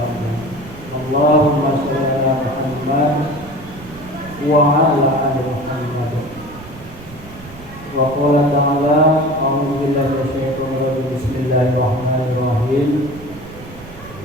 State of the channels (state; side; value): noise; right; rumble, 18 dB below the sound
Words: Allahumma shalli ala Muhammad wa ala ali Muhammad. Wa qala ta'ala a'udzu billahi minasyaitonir rajim. Bismillahirrahmanirrahim.